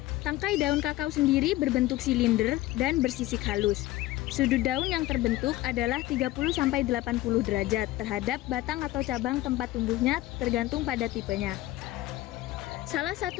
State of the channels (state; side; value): quieter; right; 16.8 dB